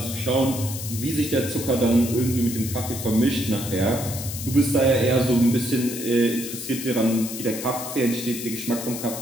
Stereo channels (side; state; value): left; noise; hiss, 8 dB below the sound